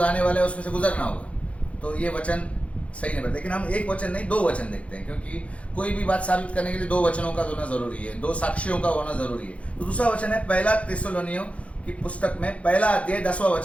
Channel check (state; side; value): late; right; 0.063 ms